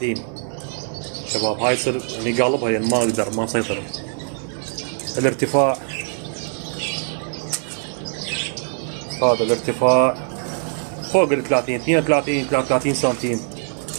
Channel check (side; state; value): left; silent; 57 dB below the other